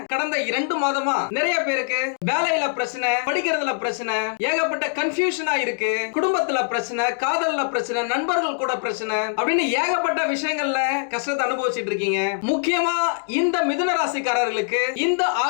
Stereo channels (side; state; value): right; silent; digital silence